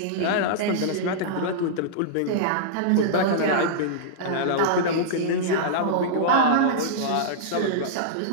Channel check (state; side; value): different; both; correlation -0.03